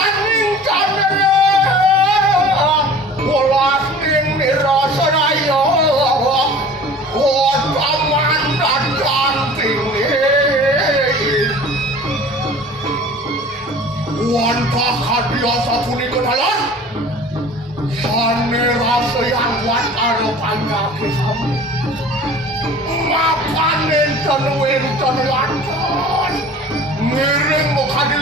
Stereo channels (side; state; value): both; normal; correlation 0.44